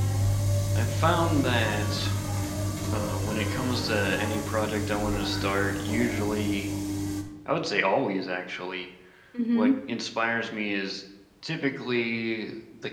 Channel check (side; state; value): both; identical; correlation 1.00